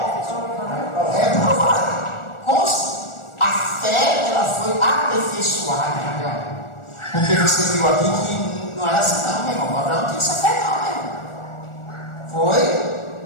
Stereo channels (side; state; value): right; late; 1.4 ms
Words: reprovado. A fé, ela foi aperfeiçoada. Porque você viu aqui que não era assim não, meu irmão. Abraão não tinha essa fé não, meu irmão. Foi